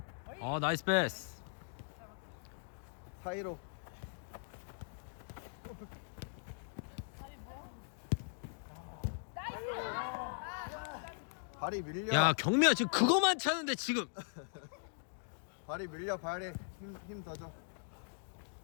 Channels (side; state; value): right; silent; digital silence